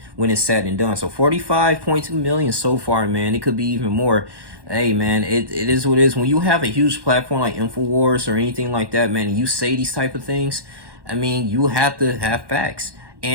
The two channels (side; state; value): left; late; 1.1 ms